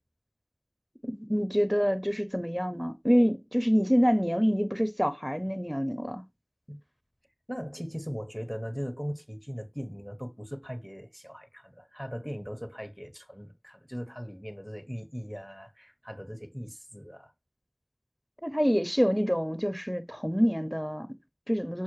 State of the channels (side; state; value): both; identical; correlation 1.00